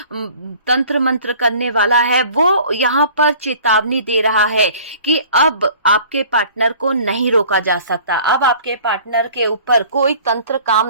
तंत्र मंत्र करने वाला है, वो यहाँ पर चेतावनी दे रहा है कि अब आपके पार्टनर को नहीं रोका जा सकता, अब आपके पार्टनर के ऊपर कोई तंत्र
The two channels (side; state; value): both; inverted; correlation -0.49